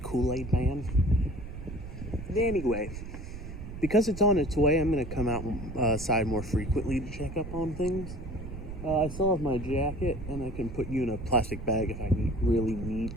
Kool-Aid man? Anyway, because it's on its way, I'm going to come outside more frequently to check up on things. I still have my jacket, and I can put you in a plastic bag if I really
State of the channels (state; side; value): noise; right; rumble, 10 dB below the sound